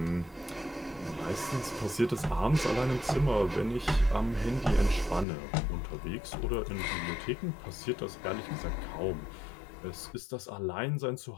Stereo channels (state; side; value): drops out; right; at 5.2 s